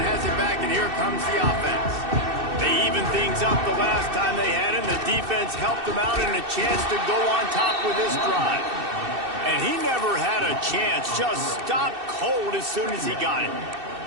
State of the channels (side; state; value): left; late; 2.6 ms